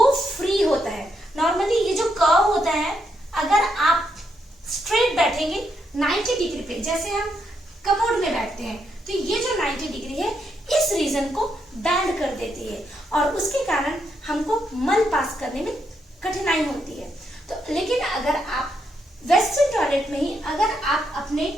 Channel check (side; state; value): both; normal; correlation 0.79